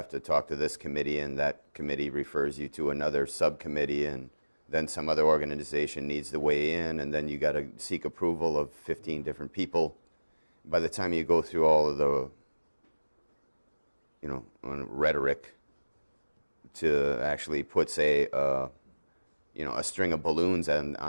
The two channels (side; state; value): both; inverted; correlation -1.00